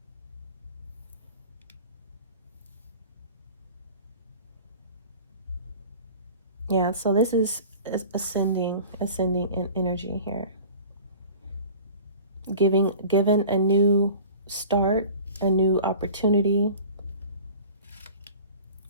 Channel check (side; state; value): both; inverted; correlation -0.42